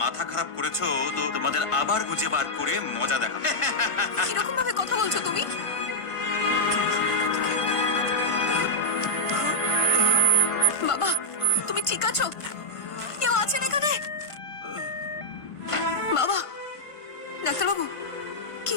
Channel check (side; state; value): right; late; 1.5 ms